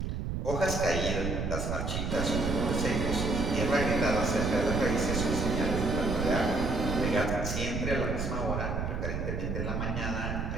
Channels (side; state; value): right; noise; rumble, 2 dB below the sound